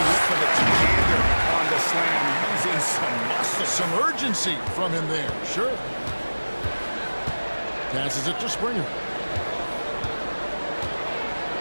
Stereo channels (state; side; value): inverted; both; correlation -1.00